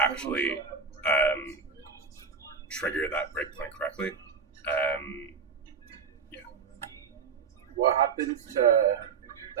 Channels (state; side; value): quieter; left; 5.6 dB